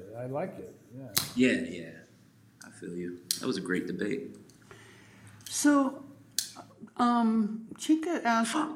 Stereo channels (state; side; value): identical; both; correlation 1.00